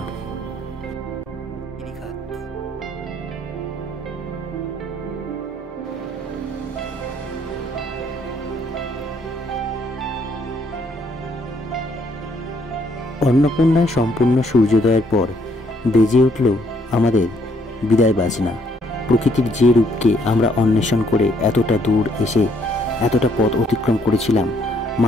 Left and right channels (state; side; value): normal; both; correlation 0.68